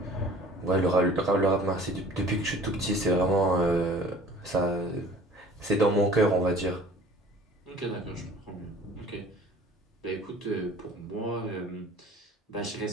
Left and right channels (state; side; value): normal; both; correlation 0.47